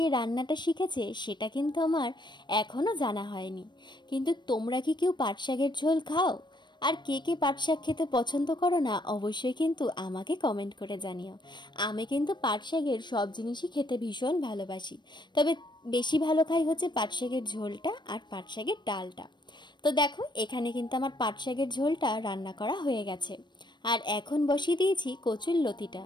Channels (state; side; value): late; right; 0.22 ms